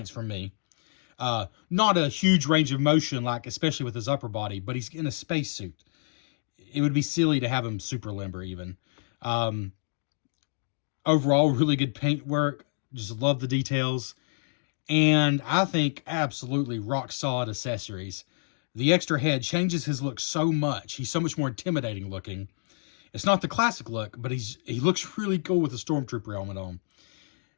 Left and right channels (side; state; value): right; silent; digital silence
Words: from me. Not a huge range of motion, like especially with his upper body, but he's in a spacesuit. It would be silly to have him super limber even. Overall, really good paint work. Just love the details. And I think absolutely rock solid accessories. The extra head changes his look so much. He's so much more intimidating looking. It's not the classic look, but he looks really cool with the Stormtrooper helmet on.